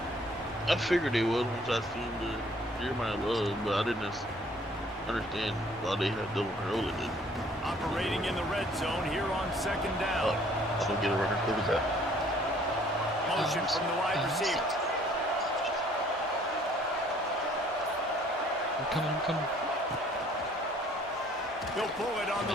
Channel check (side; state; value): both; normal; correlation 0.58